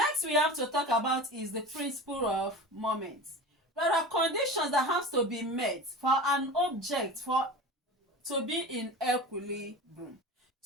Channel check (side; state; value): both; normal; correlation 0.32